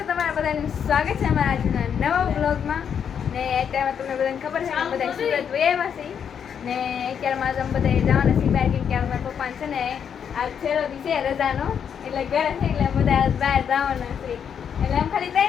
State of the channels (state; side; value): quieter; right; 7.8 dB